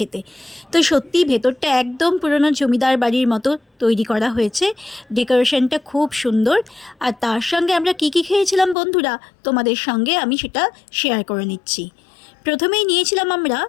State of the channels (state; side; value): drops out; right; at 8.8 s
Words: তো সত্যিই ভেতরটা একদম পুরনো জমিদার বাড়ির মতো তৈরি করা হয়েছে। ডেকোরেশনটা খুব সুন্দর। আর তার সঙ্গে আমরা কী কী খেয়েছিলাম বন্ধুরা, তোমাদের সঙ্গে আমি সেটা শেয়ার করে নিচ্ছি। প্রথমেই নিয়েছিলাম আমরা